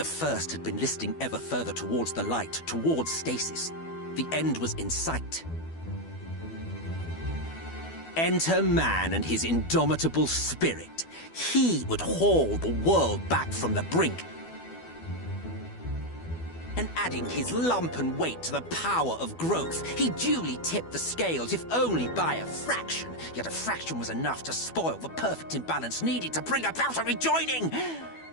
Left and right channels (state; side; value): late; right; 12 ms